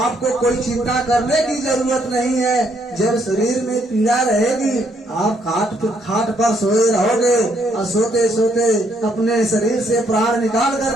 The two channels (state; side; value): normal; both; correlation 0.71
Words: कोई चिंता करने की जरूरत नहीं है। जब शरीर में पीड़ा रहेगी, आप खाट पर सोए रहोगे और सोते सोते अपने शरीर से प्राण निकाल